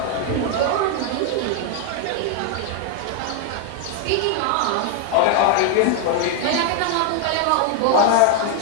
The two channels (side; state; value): both; different; correlation 0.00